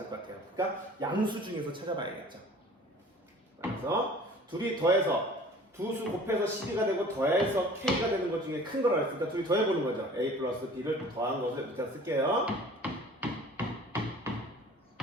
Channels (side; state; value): both; normal; correlation 0.47